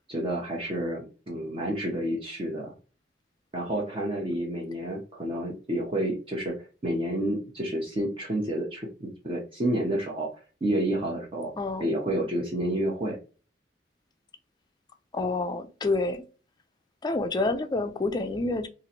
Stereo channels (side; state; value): both; normal; correlation 0.56